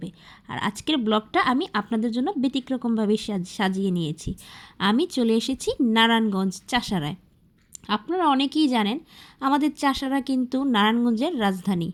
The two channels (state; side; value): identical; both; correlation 1.00